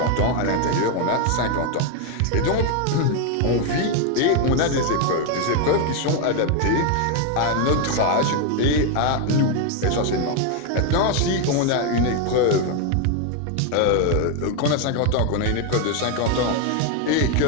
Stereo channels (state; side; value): different; both; correlation 0.01